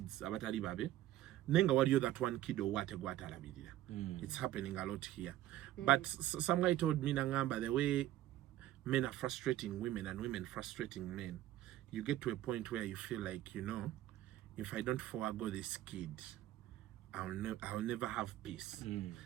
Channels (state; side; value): quieter; left; 14.0 dB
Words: abatali babe. Nenga wadiyo that one kid or what it's happening a lot here. But some guy told me, Nangamba, the way men are frustrating women and women frustrating men, you get to a point where you feel like, you know, if I don't forego this kid, I'll never have peace.